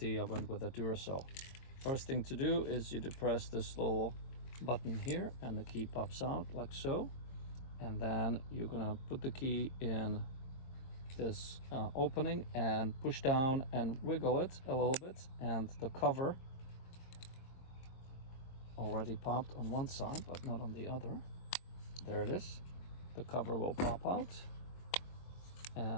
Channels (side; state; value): right; late; 23 ms